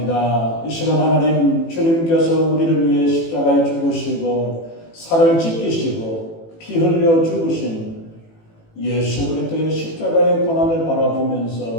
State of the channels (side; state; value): right; late; 18 ms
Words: 이 시간 하나님, 주님께서 우리를 위해 십자가에 죽으시고 살을 찢기시고 피 흘려 죽으신 예수 그리스도의 십자가의 고난을